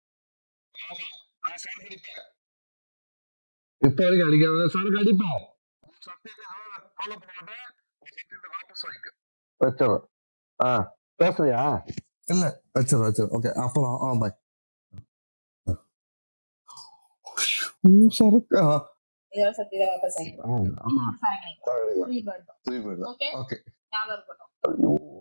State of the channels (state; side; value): inverted; both; correlation -1.00